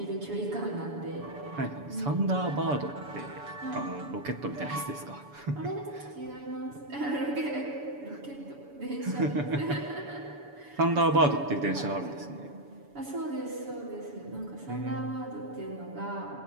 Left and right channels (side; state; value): left; late; 7.0 ms